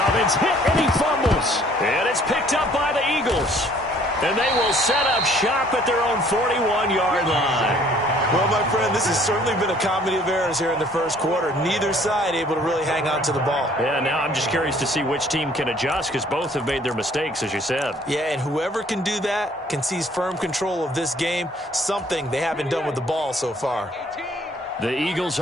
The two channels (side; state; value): both; normal; correlation 0.58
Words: hit, and he fumbles. And it's picked up by the Eagles. And they will set up shop at their own 41-yard line. Well, my friend, this has certainly been a comedy of errors here in the first quarter. Neither side able to really hang on to the ball. Yeah, now I'm just curious to see which team can adjust because both have made their mistakes, as you said. Yeah, and whoever can do that can seize firm control of this game, something they haven't done with the ball so far. The Eagles